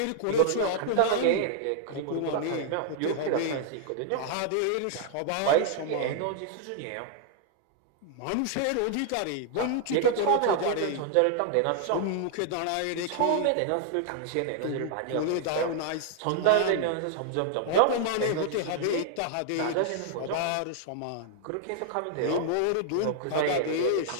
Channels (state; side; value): different; both; correlation -0.01